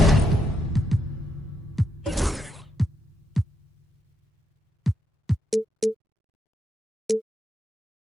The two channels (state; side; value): normal; both; correlation 0.80